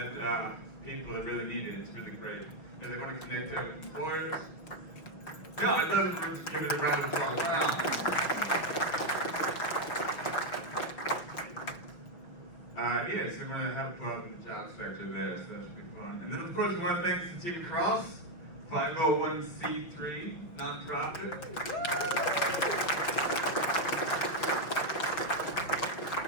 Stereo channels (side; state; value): right; late; 5.7 ms